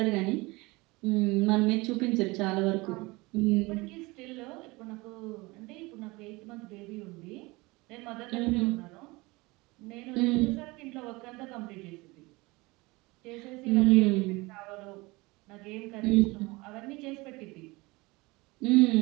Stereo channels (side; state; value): left; quieter; 23.3 dB